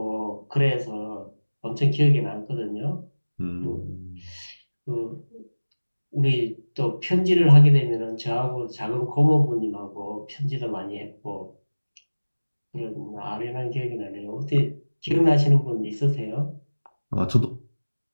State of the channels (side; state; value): both; inverted; correlation -1.00